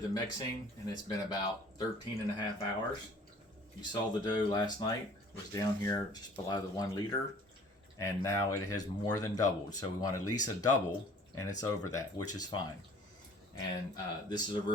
the mixing and it's been about 13 and a half hours. You saw the dough last night was down here just below the 1 liter, and now it has more than doubled. So we want at least a double, and it's over that, which is fine. And this is a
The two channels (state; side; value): normal; both; correlation 0.51